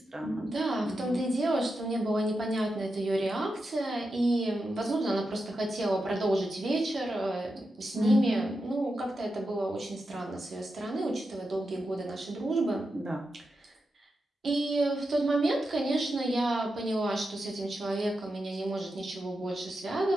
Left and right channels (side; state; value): both; normal; correlation 0.88